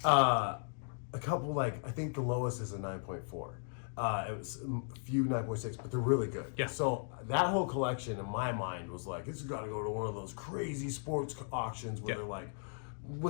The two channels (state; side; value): silent; right; 53 dB below the other